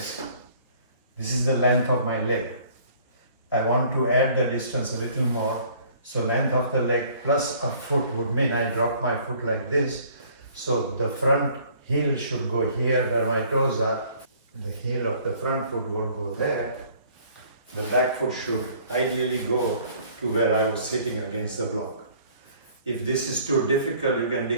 this is the length of my leg. I want to add the distance a little more, so length of the leg plus a foot would mean I drop my foot like this, so the front heel should go here where my toes are, the heel of the front foot will go there, the back foot should ideally go to where I was sitting against the block. If this is too difficult, you can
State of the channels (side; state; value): both; inverted; correlation -0.56